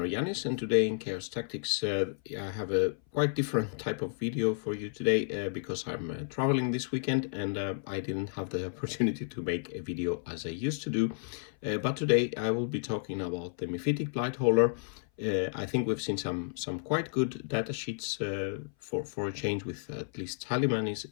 and today in Chaos Tactics I have a quite different type of video for you today because I'm traveling this weekend and I didn't have the opportunity to make a video as I used to do. But today I will be talking about the Myphitic Blighthauler. I think we've seen some quite good data sheets for a change, with at least Taliban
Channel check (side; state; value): right; silent; 57 dB below the other